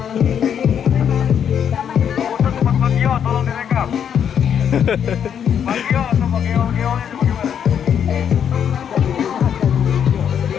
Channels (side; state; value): right; quieter; 8.4 dB